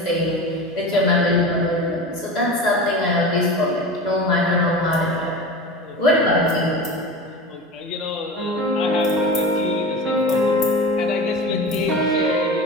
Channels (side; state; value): both; normal; correlation 0.30